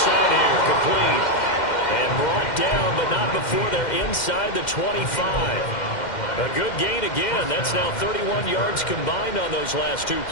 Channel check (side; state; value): right; late; 2.1 ms